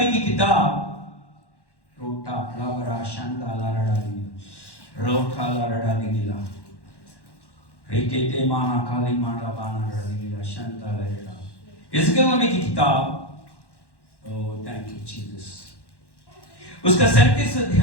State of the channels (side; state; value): right; late; 1.1 ms